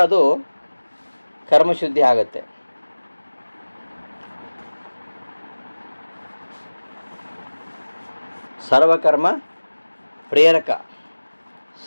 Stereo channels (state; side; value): inverted; both; correlation -1.00